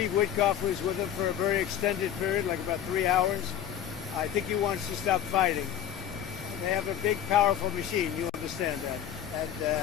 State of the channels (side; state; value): right; quieter; 10.0 dB